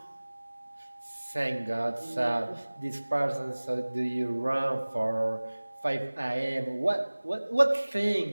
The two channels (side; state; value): both; inverted; correlation -1.00